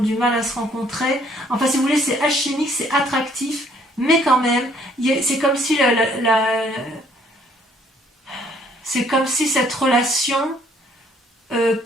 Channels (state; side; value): normal; both; correlation 0.63